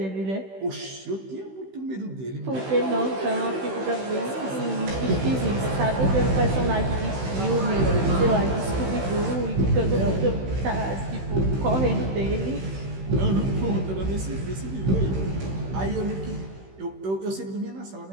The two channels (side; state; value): left; late; 16 ms